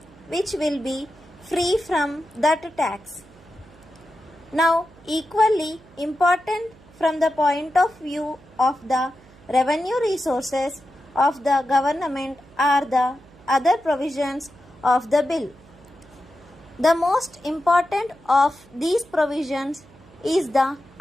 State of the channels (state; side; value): noise; right; hum, 25 dB below the sound